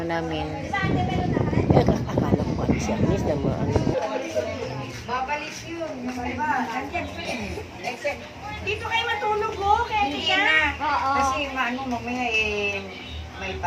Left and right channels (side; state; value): both; identical; correlation 1.00